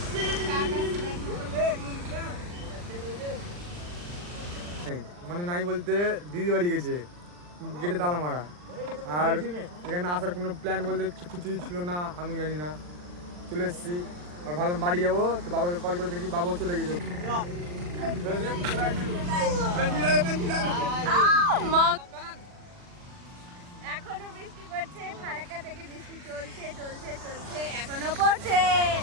মানে নাই বলতে দিদি বাড়ি গেছে, গেটে তালা মারা, আর এখানে আসার কোনো প্ল্যান বলতে কিছুই ছিল না, আমি জানি না। চলে এসেছি আর ভাবলাম বাড়ি যাবো, তো বাবাকে কল করে দেখি বাবাও চলে গেছে। এখনো বৃষ্টি পড়ছে, ফারাক্কা থেকে বৃষ্টি চলছে এখনো পড়ছে।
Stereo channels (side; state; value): left; late; 40 ms